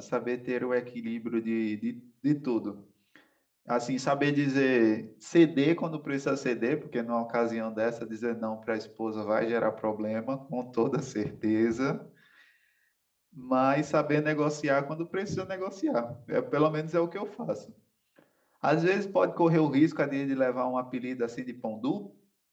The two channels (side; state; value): both; identical; correlation 1.00